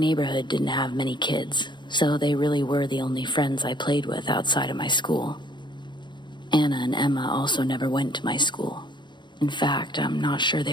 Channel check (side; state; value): right; late; 0.22 ms